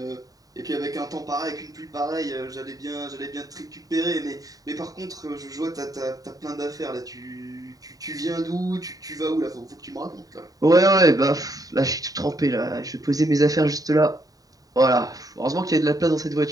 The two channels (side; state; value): left; late; 0.18 ms